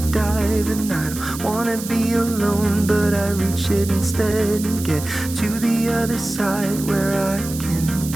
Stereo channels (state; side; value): noise; right; hiss, 11 dB below the sound